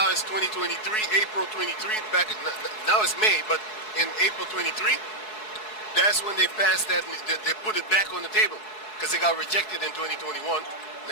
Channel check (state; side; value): late; right; 4.7 ms